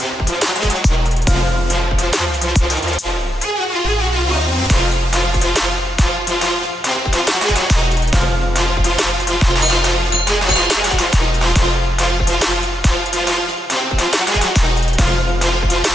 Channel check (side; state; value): both; normal; correlation 0.85